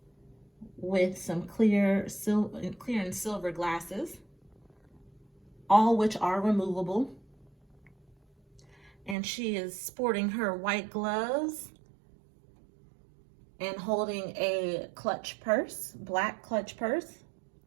with some clear and silver glasses, all which are removable. And she is sporting her white gloves and holding a clutch purse, black clutch purse.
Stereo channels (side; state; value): left; drops out; at 9.2 s